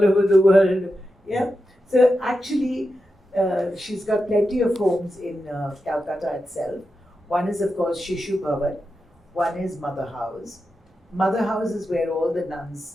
the world. Yeah. So actually, she's got plenty of homes in Calcutta itself. One is, of course, Shishu Bhavan. One is Mother House. Mother House is where all the nuns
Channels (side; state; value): both; normal; correlation 0.89